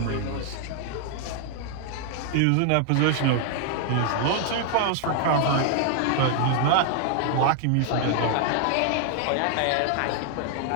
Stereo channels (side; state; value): both; different; correlation 0.00